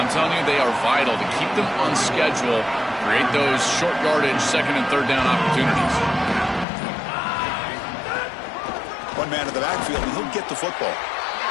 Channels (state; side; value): drops out; right; at 6.7 s